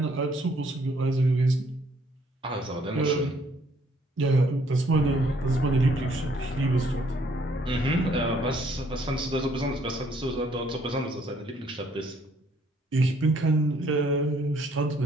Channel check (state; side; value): normal; both; correlation 0.65